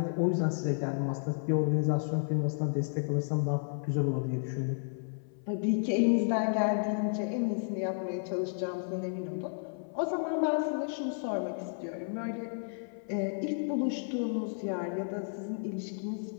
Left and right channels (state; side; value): silent; right; 56 dB below the other